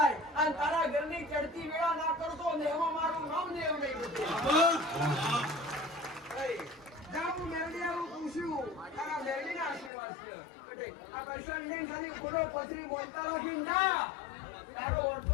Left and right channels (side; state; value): right; drops out; at 9.9 s